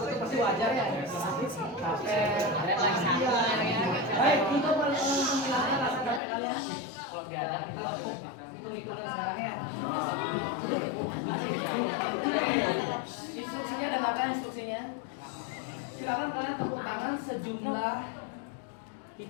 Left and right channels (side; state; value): right; drops out; at 6.2 s